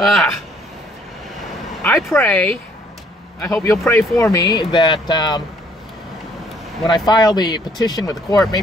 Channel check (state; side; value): normal; both; correlation 0.63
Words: I pray, I hope you'll pray for me, that when I file the petition with the court,